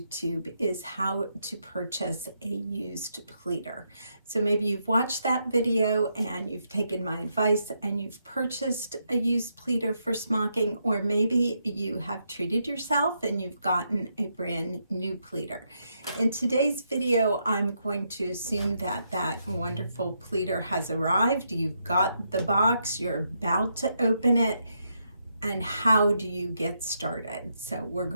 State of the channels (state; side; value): inverted; both; correlation -0.80